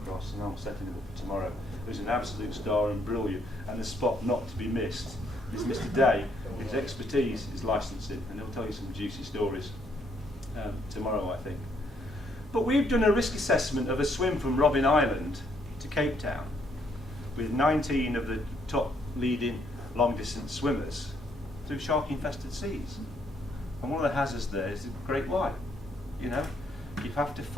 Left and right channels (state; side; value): normal; both; correlation 0.71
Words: and I'm setting him up for tomorrow, who's an absolute star and brilliant, and a spot not to be missed, is Mr. Day. His expertise is licensing, and he'll tell you some juicy stories tomorrow, I think. But we've done a risk assessment of a swim from Robben Island to Cape Town with 19 of the top leading long-distance swimmers through shark-infested seas. And one of the hazards there is the great white. You know, you have to